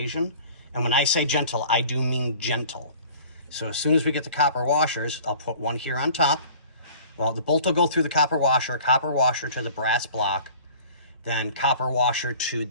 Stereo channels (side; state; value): both; inverted; correlation -0.48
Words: And when I say gentle, I do mean gentle. So as soon as we get the copper washers, I'll put one here on top. Well, the bolt will go through the copper washer to the brass block, then copper washer to